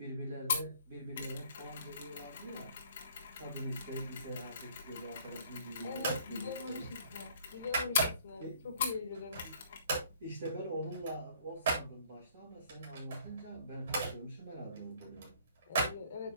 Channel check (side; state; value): both; inverted; correlation -0.58